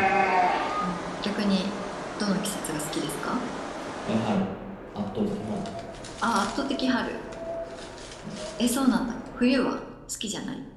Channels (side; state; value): both; identical; correlation 1.00